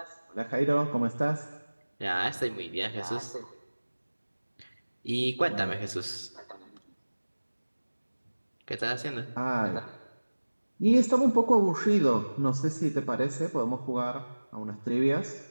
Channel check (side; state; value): both; inverted; correlation -1.00